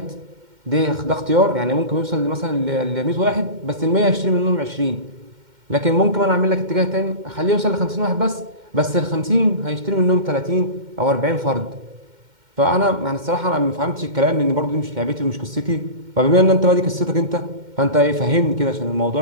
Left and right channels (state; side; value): late; left; 2.1 ms